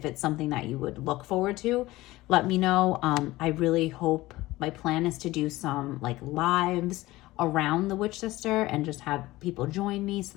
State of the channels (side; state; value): right; quieter; 18.4 dB